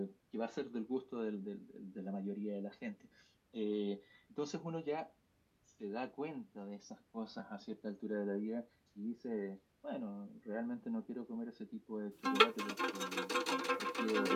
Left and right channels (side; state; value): both; identical; correlation 1.00